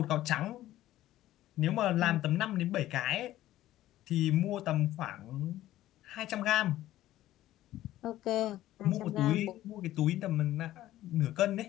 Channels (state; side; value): quieter; right; 14.4 dB